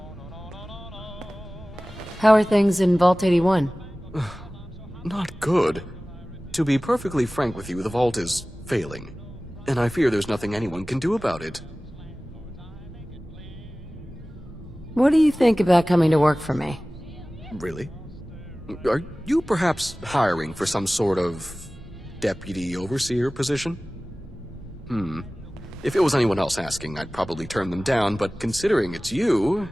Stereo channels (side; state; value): both; normal; correlation 0.98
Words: How are things in Vault 81? Not good. To be perfectly frank with you, the Vault is failing. And I fear there's nothing anyone can do about it. What do you think about coming to work for me? Really? Are you perhaps hiring for some sort of deputy overseer position? If it was anyone else asking, I'd probably turn them down, but considering it's you...